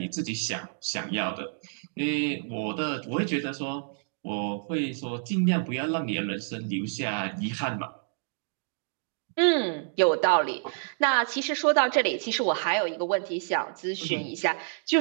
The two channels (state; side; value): silent; left; digital silence